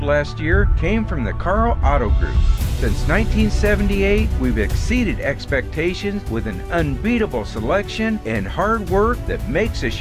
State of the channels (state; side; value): identical; both; correlation 1.00